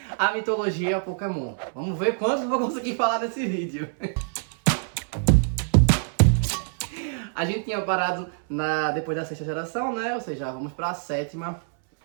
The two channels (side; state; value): left; silent; 61 dB below the other